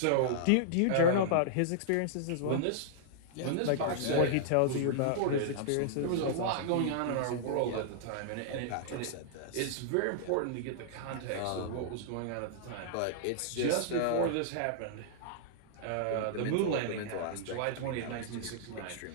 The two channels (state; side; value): different; both; correlation -0.01